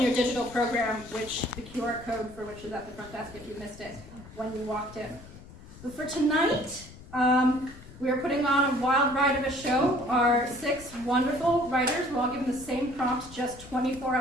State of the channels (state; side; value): noise; left; rumble, 18 dB below the sound